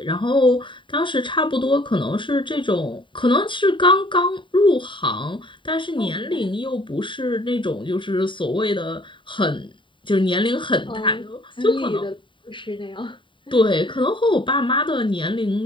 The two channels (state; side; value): late; right; 0.24 ms